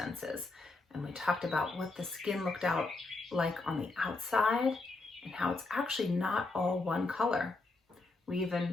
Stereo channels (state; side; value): quieter; right; 3.4 dB